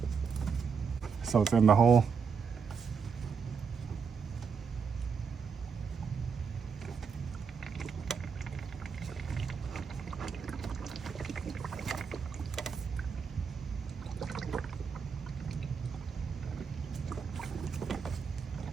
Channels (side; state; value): left; quieter; 5.9 dB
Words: So it's in the hole.